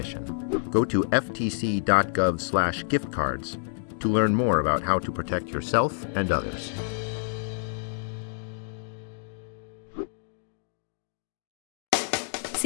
Go to ftc.gov/giftcards to learn more about how to protect yourself and others.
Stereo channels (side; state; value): right; silent; digital silence